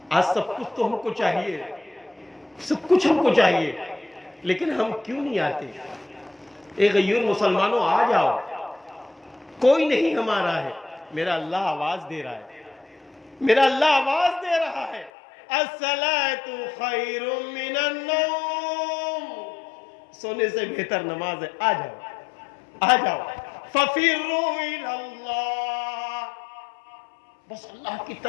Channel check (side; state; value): right; drops out; at 15.1 s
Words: آج سب کچھ تو ہم کو چاہیے، سب کچھ ہم کو چاہیے، لیکن ہم کیوں نہیں آتے؟ اے غیور مسلمانوں، آ جاؤ، کوئی نہیں ہمارا ہے. میرا اللہ آواز دے رہا ہے، میرا اللہ آواز دے رہا ہے، الصلاۃ خیر من النوم، سونے سے بہتر نماز ہے. آ جاؤ، آ جاؤ، ففروا الی اللہ، بس اللہ کی